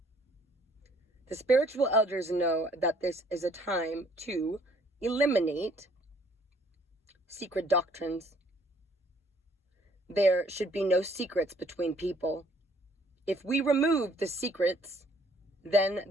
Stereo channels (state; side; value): normal; both; correlation 0.62